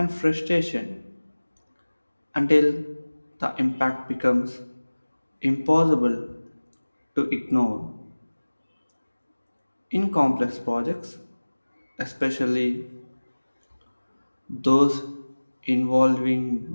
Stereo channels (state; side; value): inverted; both; correlation -1.00